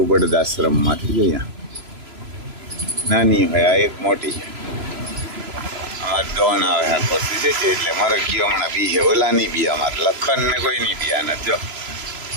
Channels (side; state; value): left; late; 3.0 ms